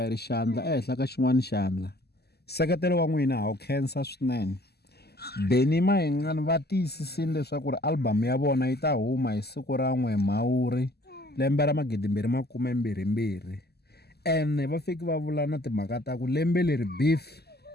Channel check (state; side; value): late; right; 0.47 ms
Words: ri xandla ehenhla ka xin'wana xandla. Nseketelo wa n'wina ha wu khensa swinene. Benny Mayengani va tiyisisile leswaku ri album ya vona yi ta huma hi siku ra 1 Mhawuri lembe ra 2022. Ene va fiki va vula na timhaka ta ku lembe leri beef